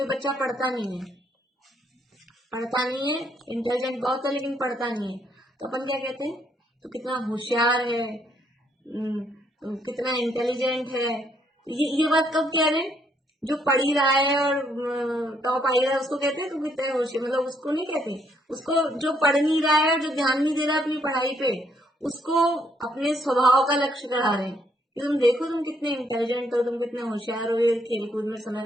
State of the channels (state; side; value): normal; both; correlation 0.70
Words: बच्चा पढ़ता नहीं है, इंटेलिजेंट बहुत है लेकिन पढ़ता नहीं है, तो अपन क्या कहते हैं, तो कितना होशियार है, कितना इंटेलिजेंट है। ये बात कब कह रहे हैं? जो पढ़ ही रहा है और टॉप आई रहा है उसको कहते हैं तो कितने होशियार, मतलब उसको नहीं कहते, उसको जो पढ़ नहीं रहा है, जो ध्यान नहीं दे रहा अपनी पढ़ाई पे, उसको अपने स्वभाव का लक्ष्य करा रहे हैं कि तुम देखो तुम कितने इंटेलिजेंट हो, तुम कितने होशियार हो, खेल कूद में समय